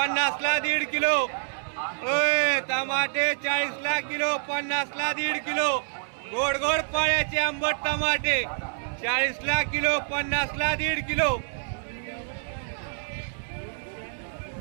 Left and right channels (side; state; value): left; silent; 60 dB below the other